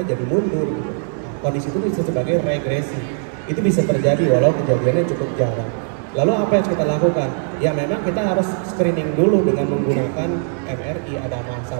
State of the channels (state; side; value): silent; left; 66 dB below the other